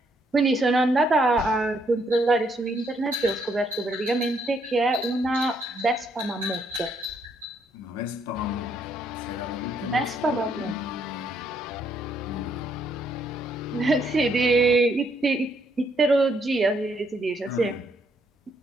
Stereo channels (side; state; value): both; normal; correlation 0.72